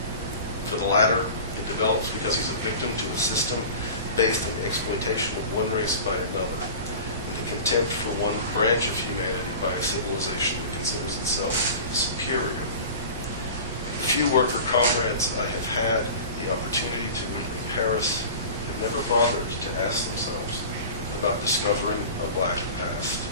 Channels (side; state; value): both; inverted; correlation -0.37